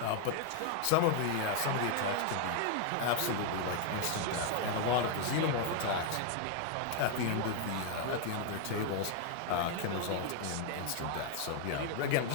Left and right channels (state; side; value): different; both; correlation 0.00